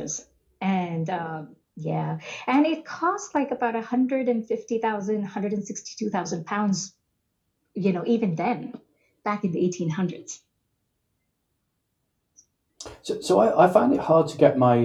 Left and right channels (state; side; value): identical; both; correlation 1.00